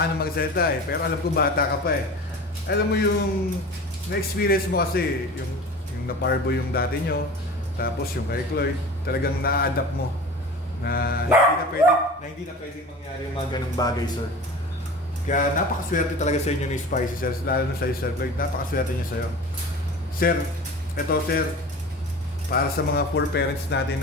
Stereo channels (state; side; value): normal; both; correlation 0.36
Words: ang magsalita eh. Pero alam ko bata ka pa eh. Alam mo yung na-experience mo kasi, yung naparbo yung dati nyo, tapos yung kay Chloe, talagang na-adapt mo na hindi na pwedeng mangyari yung mga ganung bagay, sir. Kaya napakaswerte talaga sa inyo ni Spicy, sir. Lalo na sa Sir Chloe, napakaswerte niya sa'yo. Sir, eto sir, para sa mga poor parents natin